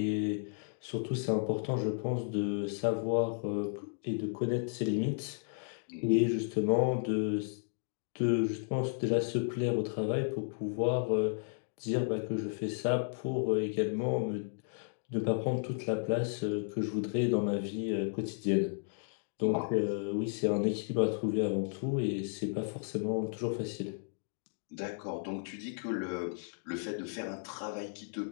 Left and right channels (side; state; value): right; silent; digital silence